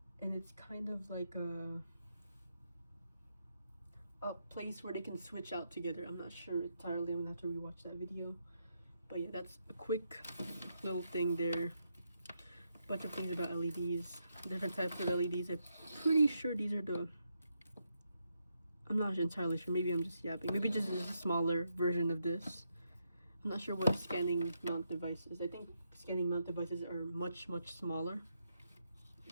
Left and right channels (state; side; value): inverted; both; correlation -0.81